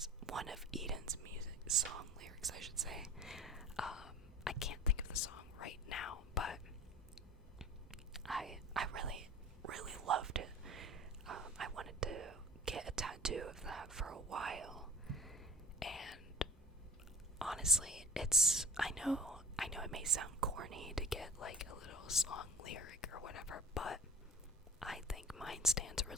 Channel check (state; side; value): normal; both; correlation 0.44